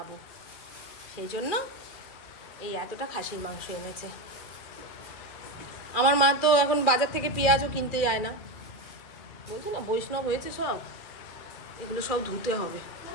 সেই জন্য এই এতটা খাসির মাংস এনেছে। আমার মা তো এখন বাজার থেকে পেঁয়াজও কিনতে যায় না, বলছি না বৈষ্ণব হয়েছে সব। এগুলো সব ধুতে হবে,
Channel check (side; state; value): right; late; 2.3 ms